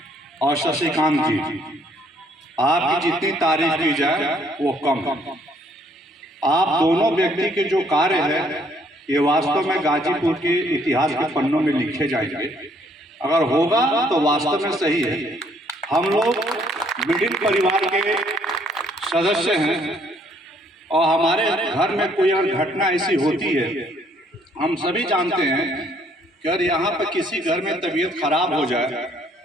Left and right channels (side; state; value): both; normal; correlation 0.65